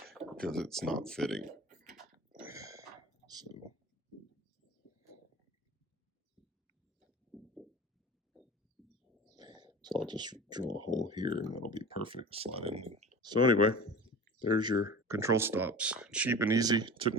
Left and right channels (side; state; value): both; normal; correlation 0.36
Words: because it's not fitting. So I'll just drill a hole here and that'll be perfect. Slide in. So anyway, there's your control stops. Cheap and easy. Took